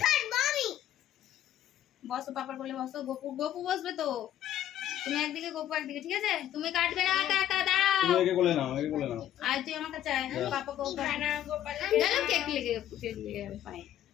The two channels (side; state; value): right; quieter; 11.8 dB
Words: বসো পাপার কোলে বসো গোপু গোপু বসবে তো তুমি একদিকে গোপু একদিকে ঠিক আছে তুমি কাটবে না একা একা দাও তুমি একে কোলে নাও একে কোলে নাও আর তুই আমার কাছে আয় পাপা গোপু না গোপাল দাঁড়াও কেক লেগে যাবে পায়ে